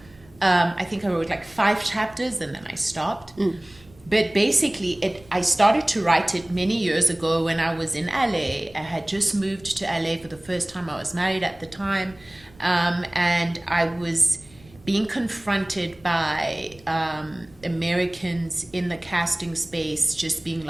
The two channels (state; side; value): noise; right; rumble, 26 dB below the sound